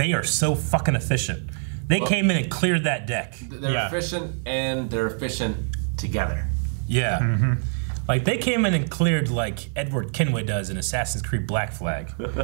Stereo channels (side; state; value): left; silent; 62 dB below the other